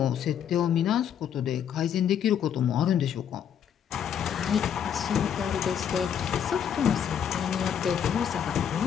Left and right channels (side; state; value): right; quieter; 8.7 dB